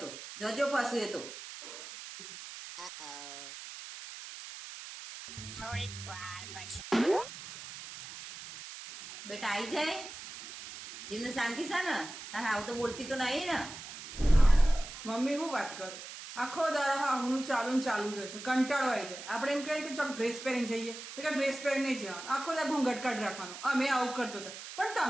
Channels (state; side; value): noise; right; hiss, 12 dB below the sound